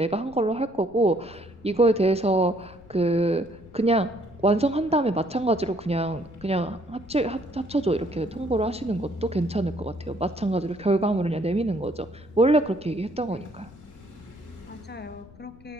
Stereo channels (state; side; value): noise; left; rumble, 22 dB below the sound